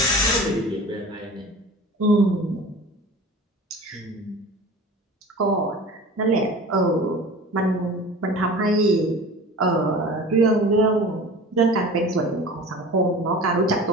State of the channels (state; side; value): normal; both; correlation 0.38